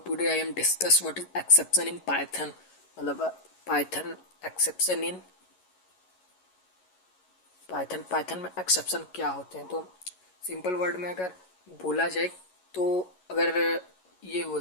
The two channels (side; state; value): right; late; 11 ms